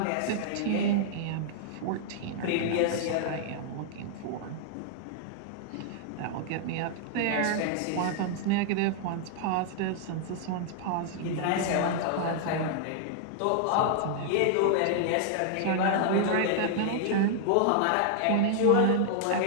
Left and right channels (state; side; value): different; both; correlation -0.01